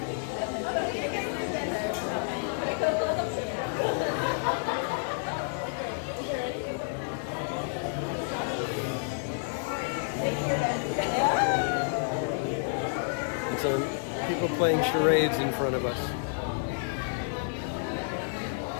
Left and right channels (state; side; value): silent; right; digital silence